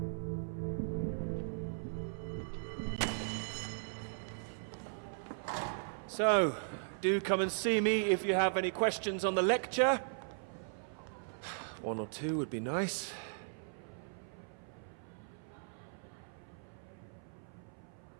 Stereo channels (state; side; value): silent; left; 52 dB below the other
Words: So, do come and see me if you have any questions on the lecture. One or two would be nice.